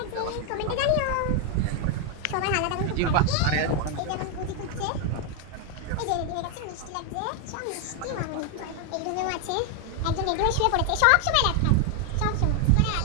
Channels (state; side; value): different; both; correlation 0.01